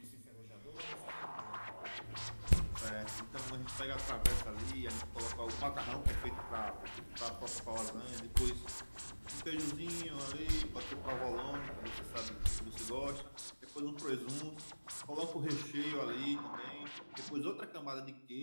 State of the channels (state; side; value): inverted; both; correlation -1.00